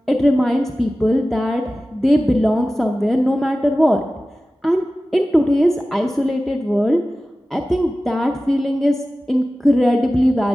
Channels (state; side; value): normal; both; correlation 0.96